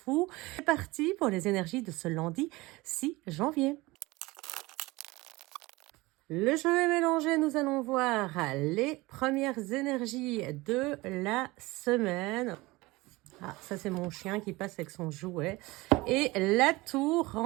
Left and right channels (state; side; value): quieter; left; 21.6 dB